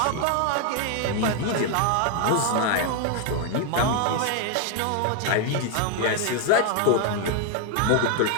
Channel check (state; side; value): different; both; correlation 0.00